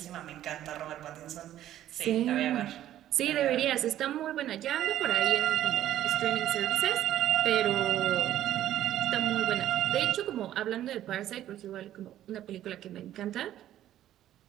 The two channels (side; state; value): left; quieter; 12.4 dB